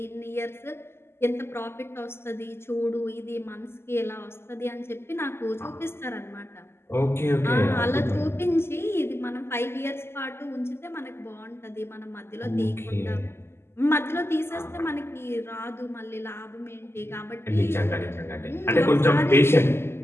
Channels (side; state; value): right; late; 0.12 ms